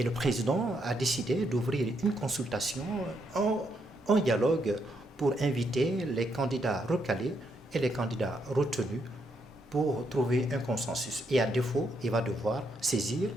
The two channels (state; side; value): normal; both; correlation 0.77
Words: le président a décidé d'ouvrir une consultation, un dialogue pour inviter les candidats recalés et les candidats retenus pour trouver un consensus. Et à défaut, il va devoir saisir